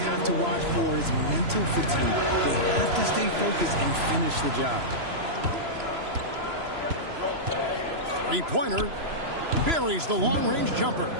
to watch for is mental fatigue. They have to stay focused and finish the job. Three-pointer buries the long-range jumper.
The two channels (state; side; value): late; left; 3.0 ms